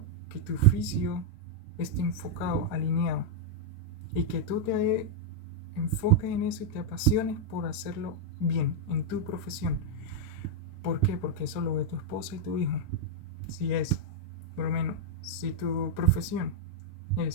que tu oficio esté enfocado, alineado, y que tú te enfoques en eso y te apasiones por hacerlo bien en tu profesión. ¿Por qué? Porque eso lo ve tu esposa y tu hijo. Si es, por lo menos, si tu profesión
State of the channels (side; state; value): both; normal; correlation -0.02